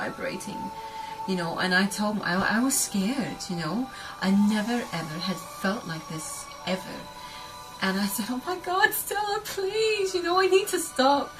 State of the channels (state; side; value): identical; both; correlation 1.00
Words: you know. And I told him, I was scared, you know. I never ever had felt like this ever. And I said, oh my God, Stella, please, you know, I need to stop.